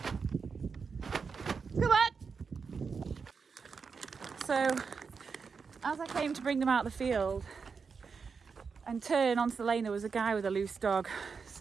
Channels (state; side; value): quieter; left; 5.4 dB